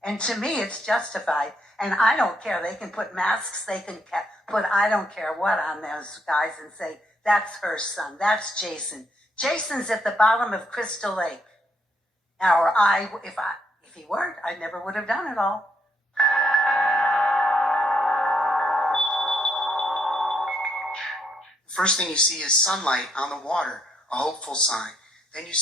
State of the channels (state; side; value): normal; both; correlation 0.74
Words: And to me, it's justified. And I don't care. They can put masks, they can put I don't care what on those guys and say, "That's her son, that's Jason. Jason's at the bottom of Crystal Lake." Or if he weren't, I never would have done it all. First thing you see is sunlight on the water, a hopeful sign. Then you